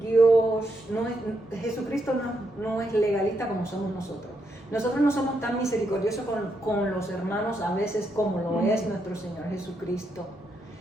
Jesucristo no es legalista como somos nosotros. Nosotros no somos tan misericordiosos con los hermanos a veces como lo es nuestro Señor Jesucristo.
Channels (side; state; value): both; normal; correlation 0.80